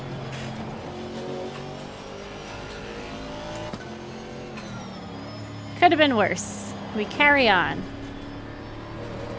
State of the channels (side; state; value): both; identical; correlation 1.00